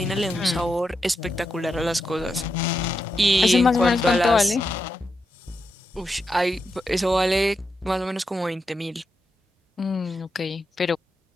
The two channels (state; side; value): normal; both; correlation 0.86